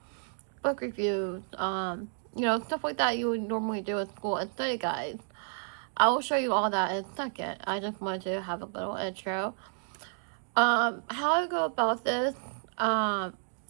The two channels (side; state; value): left; silent; digital silence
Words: reviews, stuff like that you would normally do in school and study guides. I will show you all that in a second. I just wanted to have a little intro. How I go about this, I'm